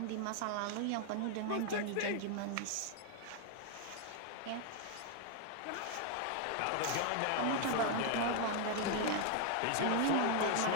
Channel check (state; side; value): different; both; correlation 0.00